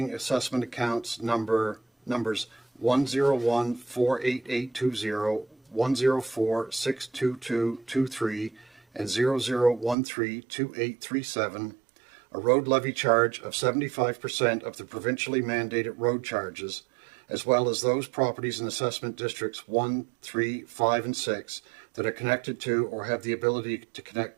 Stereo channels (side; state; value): left; drops out; at 10.0 s